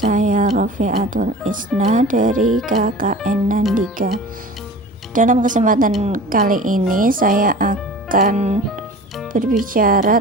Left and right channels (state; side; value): normal; both; correlation 0.39